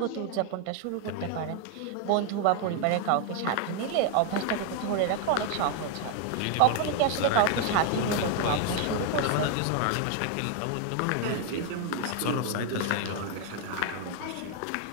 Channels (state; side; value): different; both; correlation 0.01